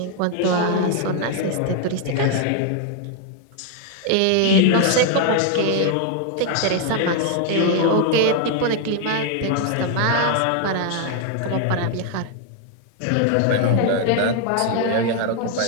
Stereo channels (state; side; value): different; both; correlation 0.00